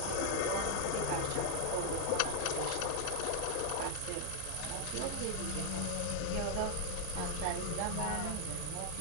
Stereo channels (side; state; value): both; different; correlation -0.01